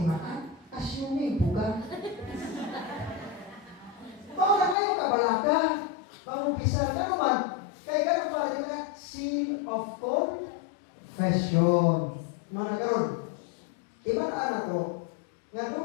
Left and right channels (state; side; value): drops out; right; at 4.8 s